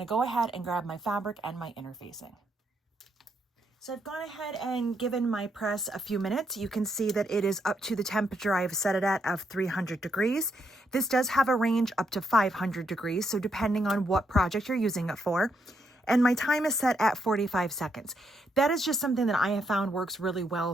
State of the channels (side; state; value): both; normal; correlation 0.77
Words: go ahead and grab my fabric and my interfacing. So I've gone ahead and given my press a few minutes. You can see that it is up to the temperature I've set it at of 300 degrees. This does have a range up to 500 degrees, so depending on what project you're using it for. And my time is set at 45 seconds. That is just something that I have found works really well